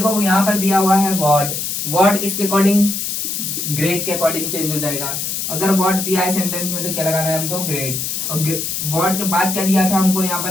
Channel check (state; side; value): noise; left; hiss, 3 dB below the sound